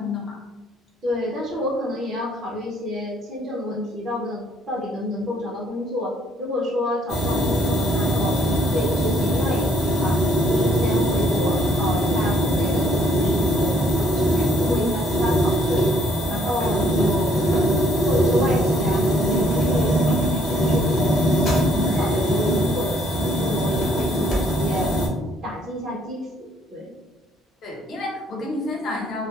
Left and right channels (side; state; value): both; normal; correlation 0.65